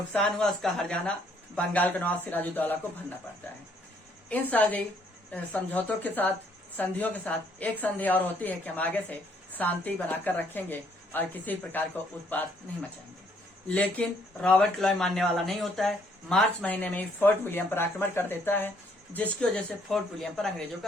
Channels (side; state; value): both; normal; correlation 0.67